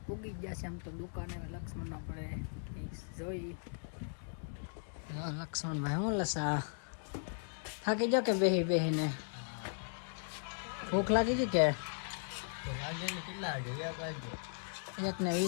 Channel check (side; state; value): right; silent; digital silence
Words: પૂગી ગયા છે આમ તો દુકાને. લક્ષ્મણ આપણે જોઈ. લક્ષ્મણભાઈ હું લસા થાકી જાઓ કે બેહીને? ભૂખ લાગી ગઈ કે? કેટલા વાગે?